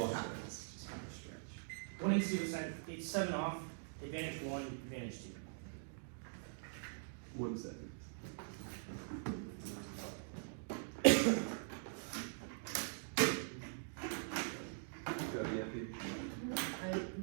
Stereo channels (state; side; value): silent; left; digital silence